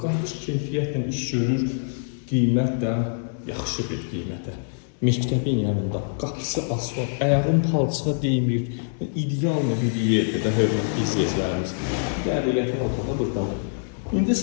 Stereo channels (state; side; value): silent; right; digital silence